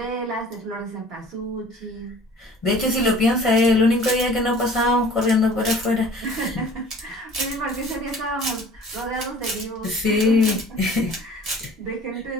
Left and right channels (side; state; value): both; normal; correlation 0.49